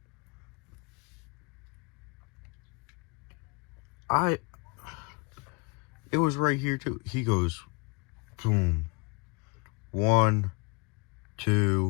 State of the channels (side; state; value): right; quieter; 29.1 dB